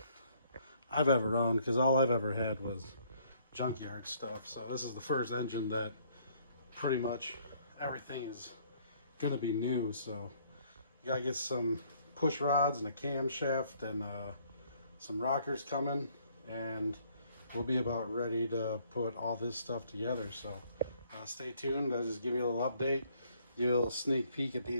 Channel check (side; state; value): both; inverted; correlation -0.64